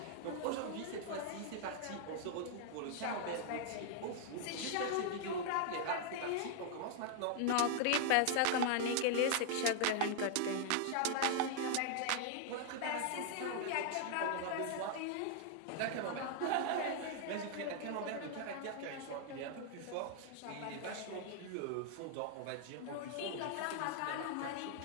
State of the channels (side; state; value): both; different; correlation 0.00